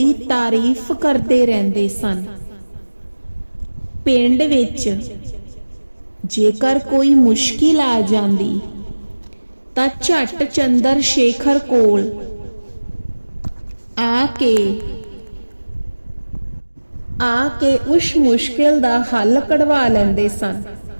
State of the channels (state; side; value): inverted; both; correlation -1.00